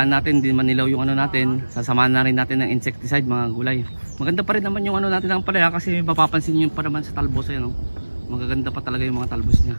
natin, hindi manilaw yung ano natin. Sasamahan na rin natin ng insecticide mga kagulay. Maganda pa rin naman yung ano natin ng palaya kasi mapapansin nyo pa naman sa talbos, ayan, oh. Magaganda pa talaga yung mga talbos niya.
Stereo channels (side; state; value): both; inverted; correlation -1.00